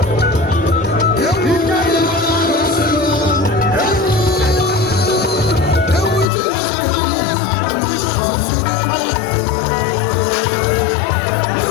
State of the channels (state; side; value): drops out; right; at 6.2 s